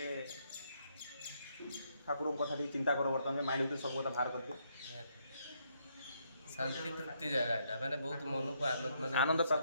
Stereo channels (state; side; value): inverted; both; correlation -0.74